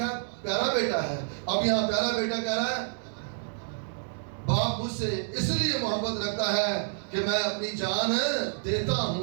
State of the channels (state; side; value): silent; left; digital silence